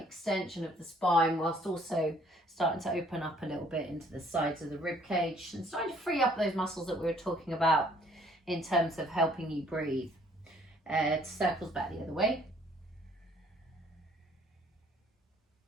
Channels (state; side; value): normal; both; correlation 0.61